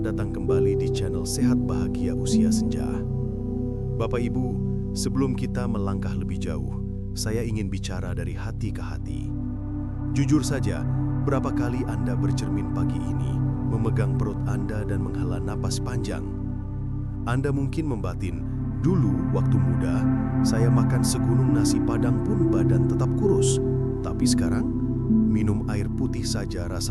datang kembali di channel Sehat Bahagia Usia Senja. Bapak Ibu, sebelum kita melangkah lebih jauh, saya ingin bicara dari hati ke hati. Jujur saja, berapa kali Anda bercermin pagi ini, memegang perut Anda dan menghela napas panjang? Anda mungkin membatin, dulu waktu muda, saya makan segunung nasi padang pun badan tetap kurus. Tapi sekarang, minum air putih saja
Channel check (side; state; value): both; identical; correlation 1.00